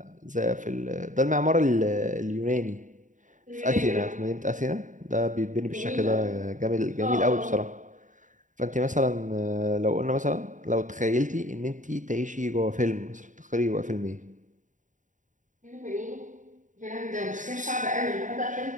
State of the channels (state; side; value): late; left; 0.37 ms